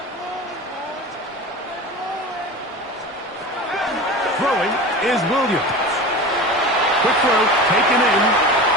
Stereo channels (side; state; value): both; normal; correlation 0.32